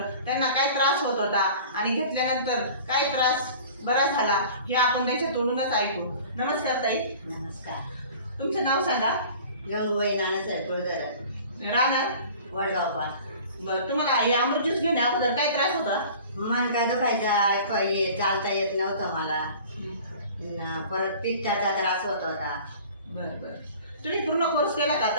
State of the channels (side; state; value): both; inverted; correlation -0.44